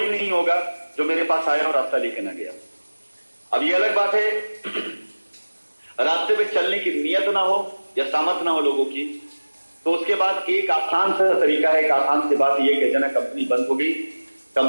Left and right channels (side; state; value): both; inverted; correlation -1.00